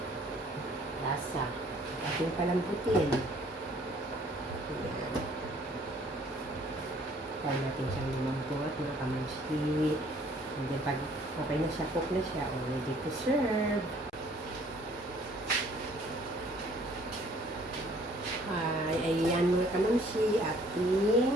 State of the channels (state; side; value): normal; both; correlation 0.58